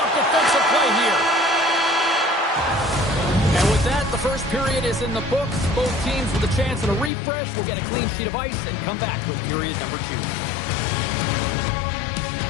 is in the books. Both teams with a chance at a refresh will get a clean sheet of ice and come back with period number 2.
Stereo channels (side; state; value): right; drops out; at 7.1 s